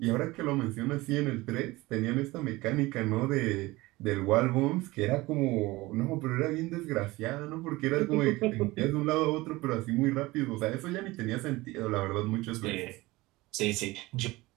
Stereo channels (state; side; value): quieter; left; 20.4 dB